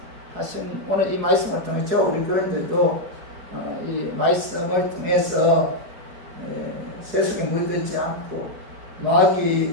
오늘 이 말씀을 통해서 우리 교인들도 이 말씀을 통해서 세속에 물들지 않고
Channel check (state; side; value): late; left; 4.7 ms